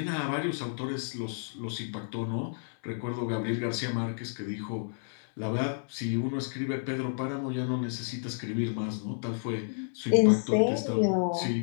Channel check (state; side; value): silent; right; 57 dB below the other